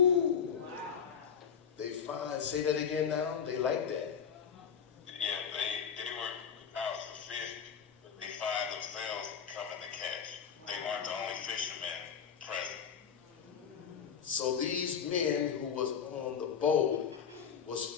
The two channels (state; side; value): quieter; right; 7.4 dB